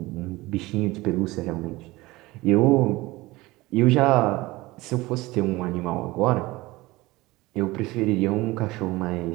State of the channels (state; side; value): quieter; left; 20.3 dB